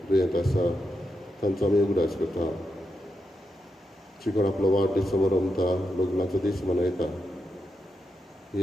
दुयेंत आसा तांचो आमी उगडास करता शिकोण आपलो वाडदीस समोर रमता लग्नाचो दीस मनयता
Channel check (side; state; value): both; normal; correlation 0.85